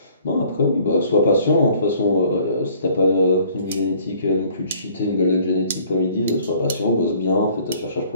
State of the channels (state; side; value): inverted; both; correlation -0.57